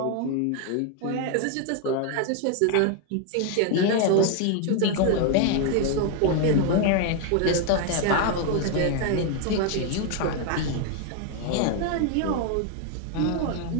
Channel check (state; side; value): different; both; correlation 0.01